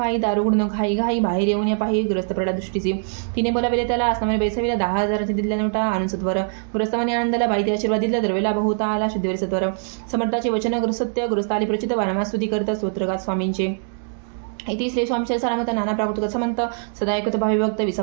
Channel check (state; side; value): silent; left; digital silence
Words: दारू गुण घाई घाई बाहेर येऊन या पाही ग्रस्त प्रडा दृष्टीची. तिने बोलाविले त्याला, असनामाने बैसविला, 10,000 दिल्या नोटा आणून सत्वर. ग्रस्तमाने आनंदाला बाईते आशीर्वाद दिला, द्रव्य लाभ होता आला शुद्धीवर सत्वर. समर्थाचे वचन सत्य ग्रस्त आली प्रचित, वारंवार स्तुती करत स्तोत्रगात स्वामींचे. इति श्री स्वामीचे सारामत नाना प्राकृत समंत सदा ऐकत भावी भक्त